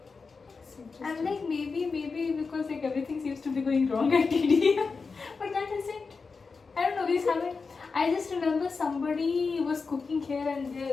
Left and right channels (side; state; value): right; quieter; 4.7 dB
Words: this? I'm like maybe because like everything seems to be going wrong at TD. But that isn't. I don't know. We haven't. I just remember somebody was cooking here and